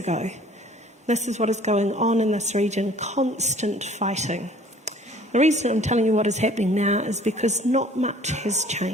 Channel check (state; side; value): normal; both; correlation 0.52